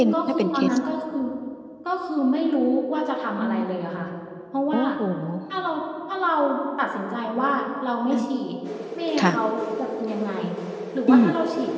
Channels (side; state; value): both; identical; correlation 1.00